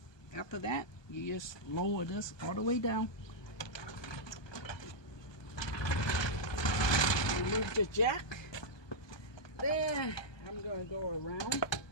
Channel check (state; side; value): late; right; 1.2 ms